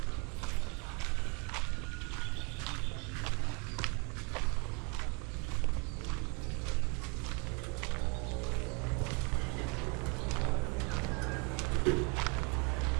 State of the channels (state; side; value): quieter; left; 33.1 dB